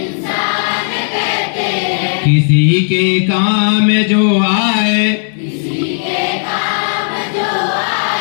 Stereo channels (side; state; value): right; silent; digital silence